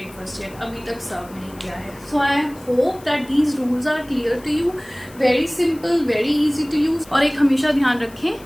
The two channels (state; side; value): noise; left; hiss, 23 dB below the sound